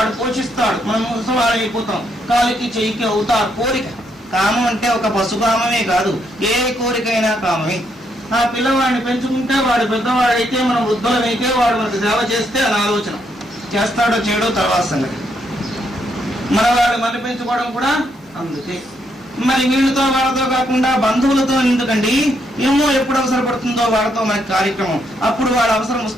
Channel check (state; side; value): normal; both; correlation 0.76